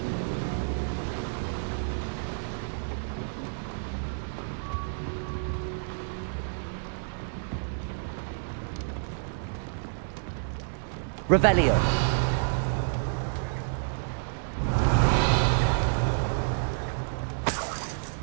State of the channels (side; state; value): left; silent; digital silence